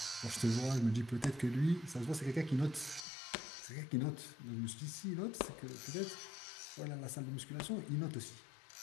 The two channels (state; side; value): drops out; right; at 3.1 s